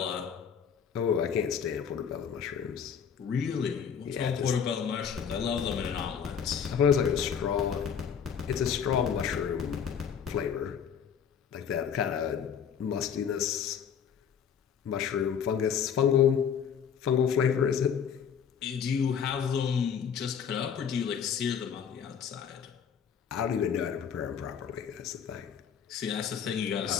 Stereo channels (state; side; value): quieter; right; 7.6 dB